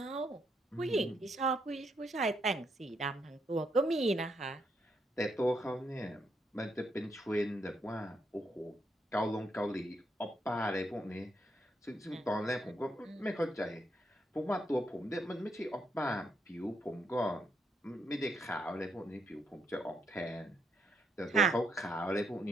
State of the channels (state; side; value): normal; both; correlation 0.77